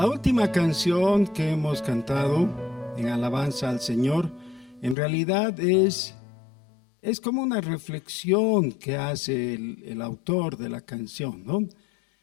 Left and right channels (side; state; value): right; drops out; at 5.0 s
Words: última canción que hemos cantado en alabanza al Señor, en realidad es como una reflexión que hace el autor de la canción, ¿no?